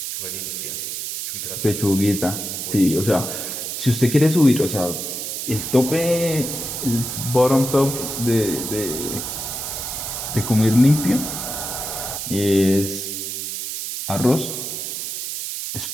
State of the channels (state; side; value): noise; right; hiss, 5 dB below the sound